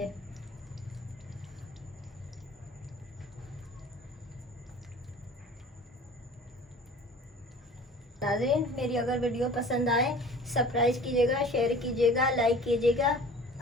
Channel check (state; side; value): normal; both; correlation 0.44